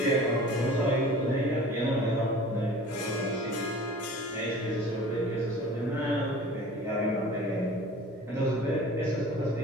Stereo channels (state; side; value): normal; both; correlation 0.43